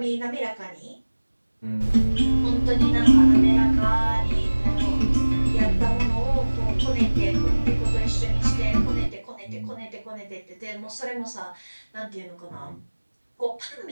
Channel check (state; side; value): inverted; both; correlation -1.00